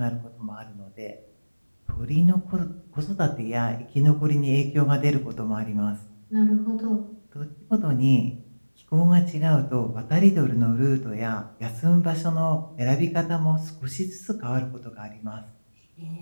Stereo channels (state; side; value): inverted; both; correlation -1.00